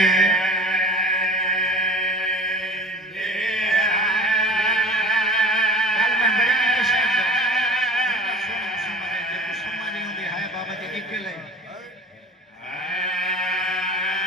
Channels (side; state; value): both; normal; correlation 0.42